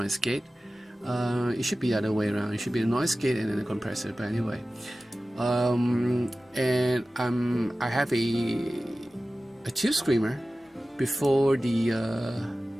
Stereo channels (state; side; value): normal; both; correlation 0.96